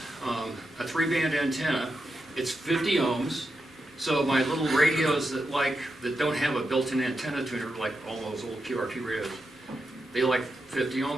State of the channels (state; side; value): normal; both; correlation 0.87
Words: a 3-band antenna. It's 50 ohms. So my little radios that don't have a built-in antenna tuner, like all those old QRP radios, they like 50